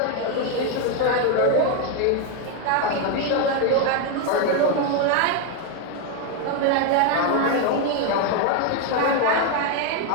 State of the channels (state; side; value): different; both; correlation 0.02